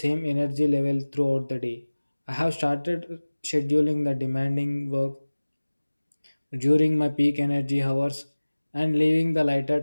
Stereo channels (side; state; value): both; inverted; correlation -1.00